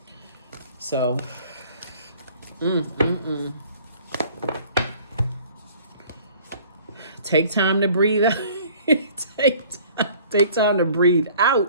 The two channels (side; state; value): both; inverted; correlation -0.52